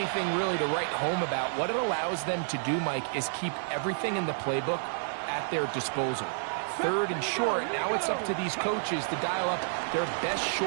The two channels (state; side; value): silent; left; digital silence